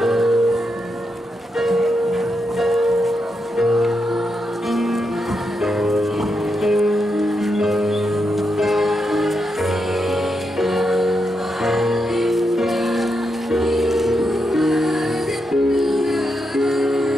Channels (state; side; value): normal; both; correlation 0.84